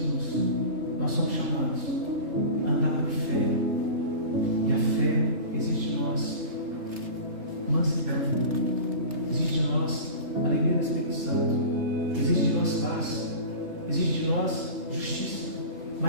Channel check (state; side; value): late; left; 3.3 ms